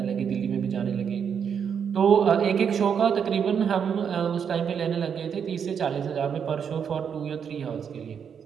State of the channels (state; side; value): quieter; left; 7.4 dB